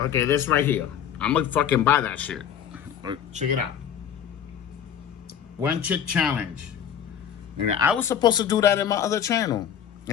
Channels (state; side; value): quieter; right; 9.0 dB